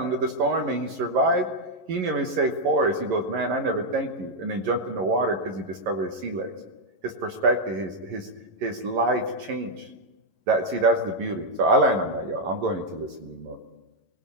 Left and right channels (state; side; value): late; left; 11 ms